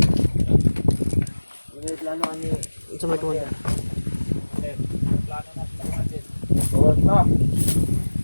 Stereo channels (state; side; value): inverted; both; correlation -1.00